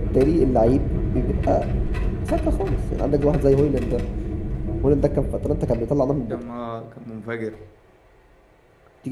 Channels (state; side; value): identical; both; correlation 1.00